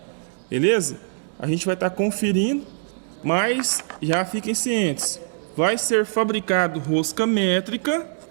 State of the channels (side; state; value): left; silent; digital silence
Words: beleza? A gente vai estar conferindo, mas já fiquem cientes. Vai ser fabricado rosca métrica,